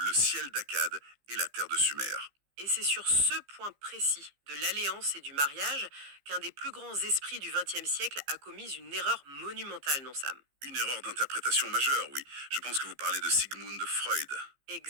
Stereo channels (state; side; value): late; left; 15 ms